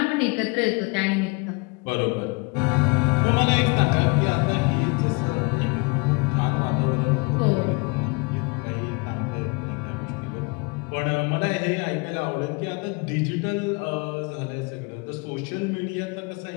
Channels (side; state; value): right; quieter; 29.9 dB